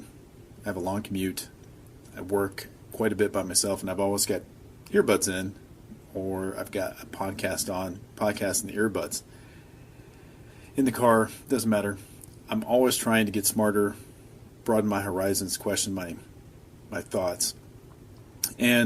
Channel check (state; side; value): identical; both; correlation 1.00